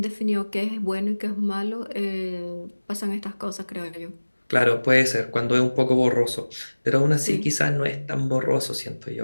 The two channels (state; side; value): inverted; both; correlation -1.00